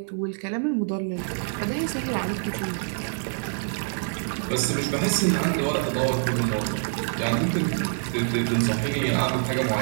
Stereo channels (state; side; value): silent; left; digital silence